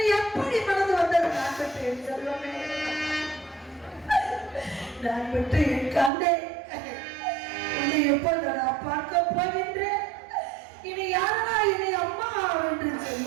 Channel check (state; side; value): drops out; left; at 6.1 s